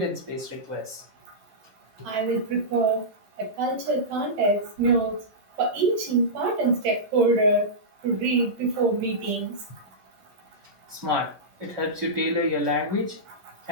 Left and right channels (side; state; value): left; late; 10 ms